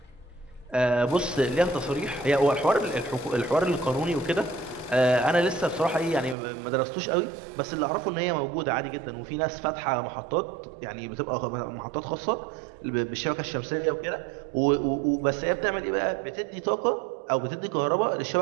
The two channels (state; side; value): drops out; left; at 6.4 s